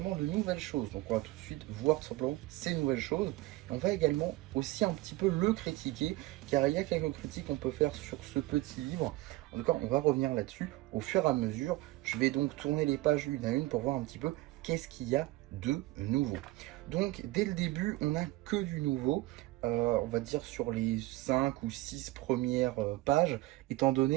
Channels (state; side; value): quieter; left; 19.1 dB